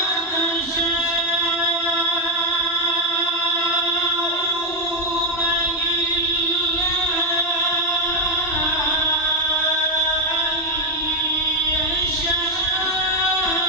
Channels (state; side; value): normal; both; correlation 0.05